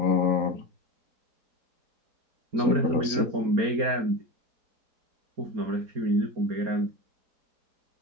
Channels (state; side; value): late; left; 4.1 ms